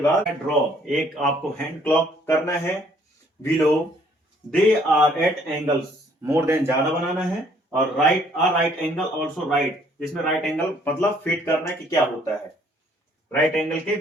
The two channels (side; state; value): both; normal; correlation 0.62